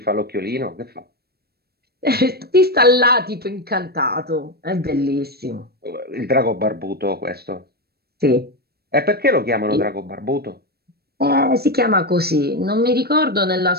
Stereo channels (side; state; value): left; late; 0.46 ms